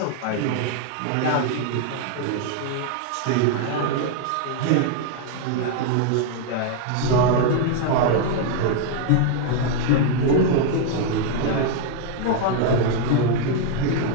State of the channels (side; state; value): both; different; correlation 0.00